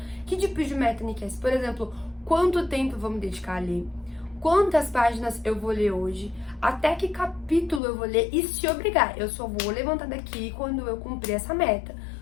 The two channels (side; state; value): right; drops out; at 7.8 s